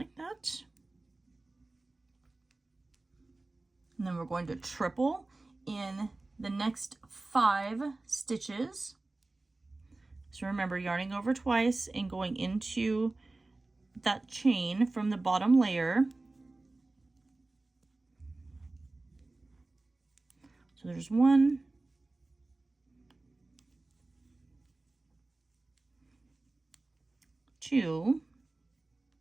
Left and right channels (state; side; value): quieter; left; 3.1 dB